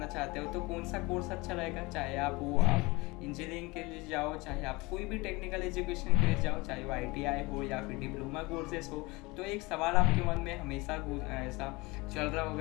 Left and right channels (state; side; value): quieter; right; 23.9 dB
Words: चाहते हो तो कौन सा कोर्स अच्छा रहेगा, चाहे आप इंजीनियरिंग के लिए जाओ, चाहे आप कोई भी टेक्निकल एजुकेशन के लिए जाओ, चाहे वो ITI हो या फिर डिप्लोमा कोर्सेस हो। तो एक सवाल आपके मन में हमेशा ऐसा चल रहा